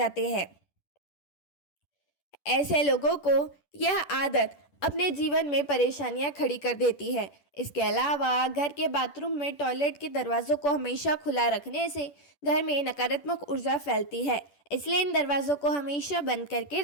हैं। ऐसे लोगों को यह आदत अपने जीवन में परेशानियां खड़ी कर देती है। इसके अलावा घर के बाथरूम में टॉयलेट के दरवाजों को हमेशा खुला रखने से घर में नकारात्मक ऊर्जा फैलती है। इसलिए इन दरवाजों को हमेशा बंद करके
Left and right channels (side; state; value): right; late; 10 ms